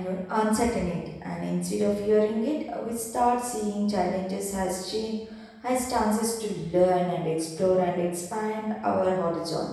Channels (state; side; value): identical; both; correlation 1.00